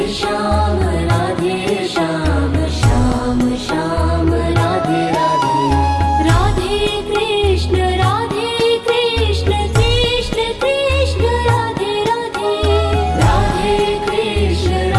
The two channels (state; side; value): identical; both; correlation 1.00